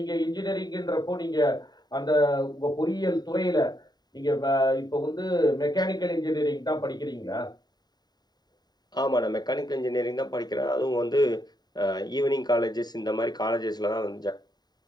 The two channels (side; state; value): right; late; 0.20 ms